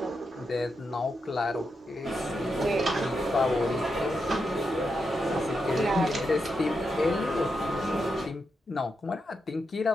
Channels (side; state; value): both; normal; correlation 0.85